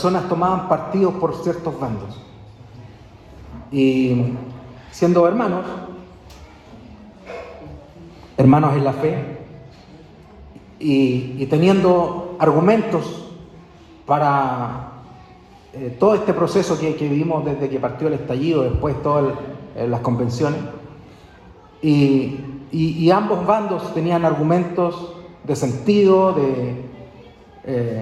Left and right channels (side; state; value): both; identical; correlation 1.00